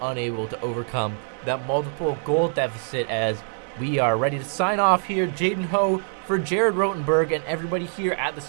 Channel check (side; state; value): left; silent; 55 dB below the other